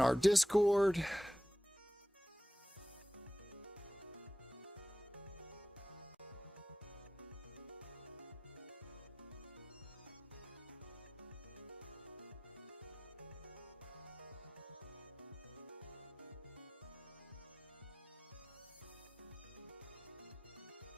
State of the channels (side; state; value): both; normal; correlation 0.92